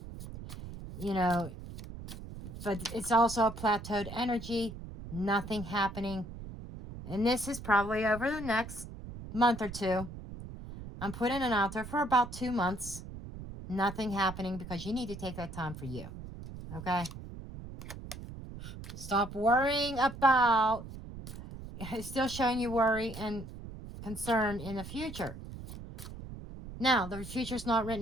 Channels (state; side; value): noise; right; rumble, 11 dB below the sound